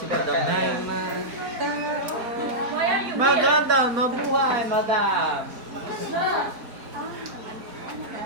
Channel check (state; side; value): late; left; 4.3 ms